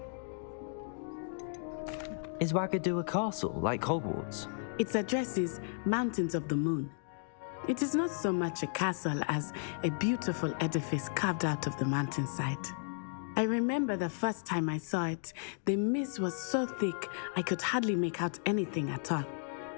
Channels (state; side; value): silent; right; digital silence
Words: Is Ouagadougou a castle, like Hogwarts? Its address is Mountains of the Moon. It is not so much a castle as a beautiful edifice carved out of the mountainside. I remember the first time I saw it, the mist was so thick I could hardly make out anything at all.